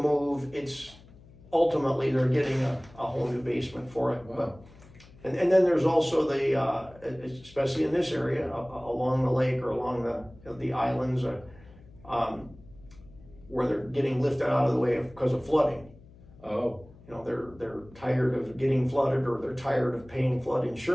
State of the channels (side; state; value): left; noise; hum, 23 dB below the sound